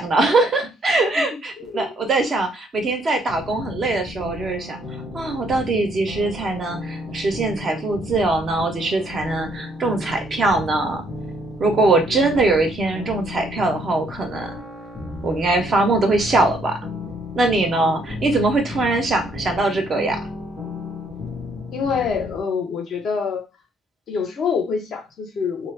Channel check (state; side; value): normal; both; correlation 0.67